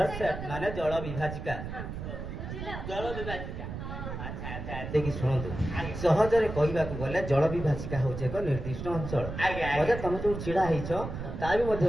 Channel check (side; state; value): right; noise; rumble, 7 dB below the sound